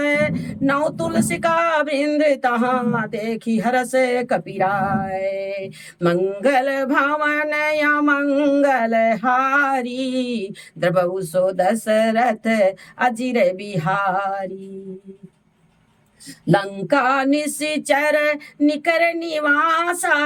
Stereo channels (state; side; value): identical; both; correlation 1.00